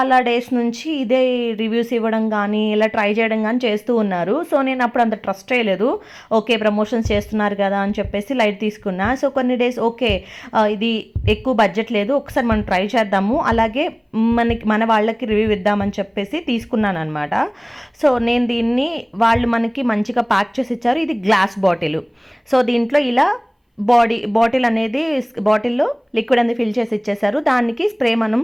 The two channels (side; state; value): both; identical; correlation 1.00